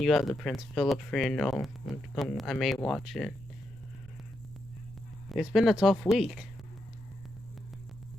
you have the Prince Philip funeral. I may watch it. It's been a tough week.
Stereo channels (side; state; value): right; noise; rumble, 19 dB below the sound